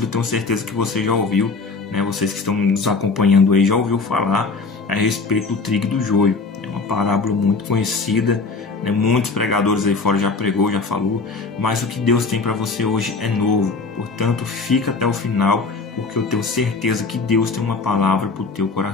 tenho certeza que você já ouviu, né? Vocês que estão nos acompanhando aí já ouviu falar a respeito do trigo e do joio. É uma parábola muito conhecida, né? Muitos pregadores aí fora já pregou, já falou, mas o que Deus tem para você hoje é novo. Portanto, fica até o final, porque eu tenho certeza que Deus tem uma palavra para o teu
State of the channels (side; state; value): right; quieter; 4.2 dB